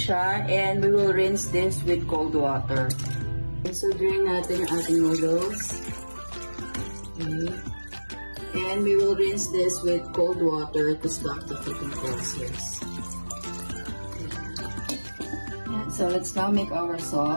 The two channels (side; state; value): both; inverted; correlation -1.00